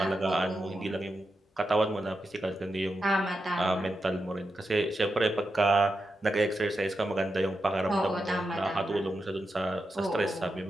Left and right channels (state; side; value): normal; both; correlation 0.88